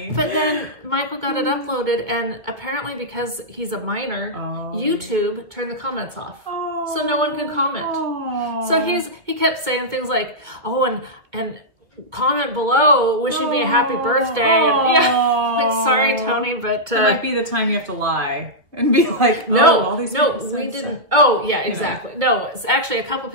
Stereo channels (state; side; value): late; left; 2.1 ms